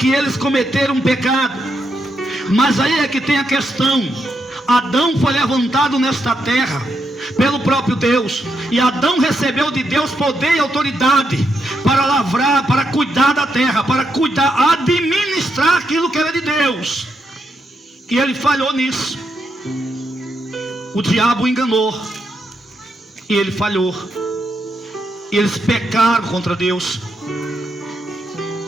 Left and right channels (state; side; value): normal; both; correlation 0.81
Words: eles cometeram um pecado. Mas aí é que tem a questão. Adão foi levantado nesta terra pelo próprio Deus, e Adão recebeu de Deus poder e autoridade para lavrar, para cuidar da terra, para cuidar, administrar aquilo que era de Deus. E ele falhou nisso. O diabo enganou, e ele falhou. Eles pecaram contra Deus.